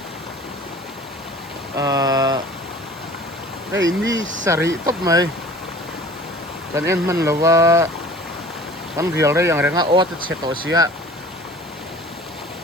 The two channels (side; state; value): both; normal; correlation 0.45